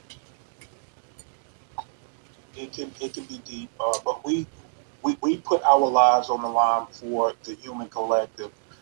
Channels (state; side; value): silent; left; digital silence